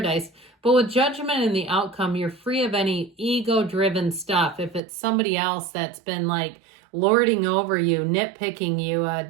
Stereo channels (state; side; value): drops out; left; at 4.8 s